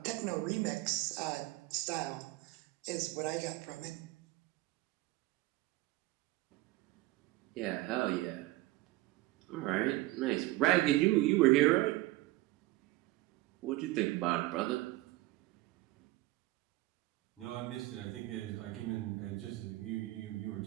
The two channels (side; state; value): left; quieter; 18.3 dB